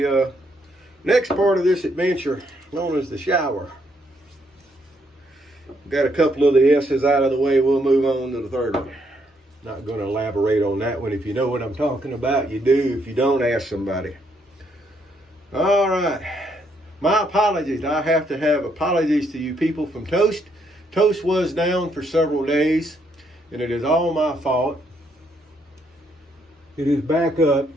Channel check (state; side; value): normal; both; correlation 0.73